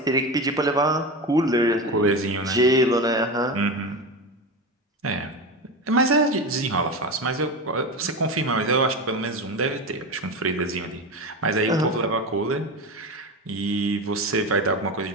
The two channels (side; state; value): both; normal; correlation 0.22